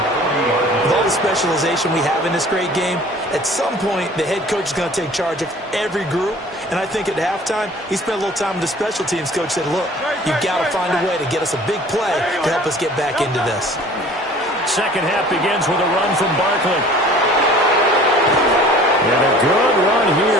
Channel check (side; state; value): both; normal; correlation 0.48